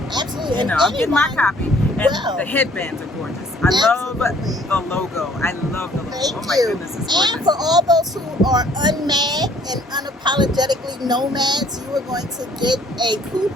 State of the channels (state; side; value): normal; both; correlation 0.59